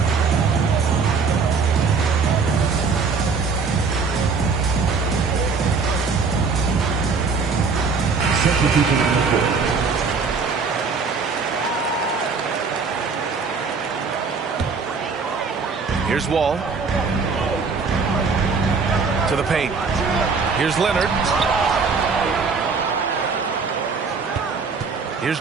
Here's Wall. To the paint. Here's Leonard. Here's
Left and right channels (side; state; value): left; quieter; 4.9 dB